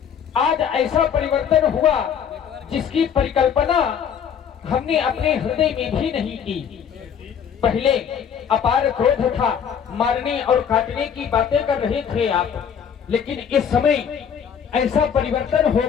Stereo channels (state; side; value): quieter; right; 7.8 dB